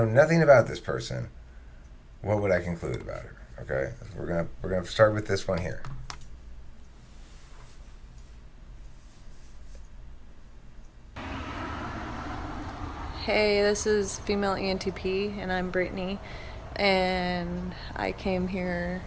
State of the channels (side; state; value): both; identical; correlation 1.00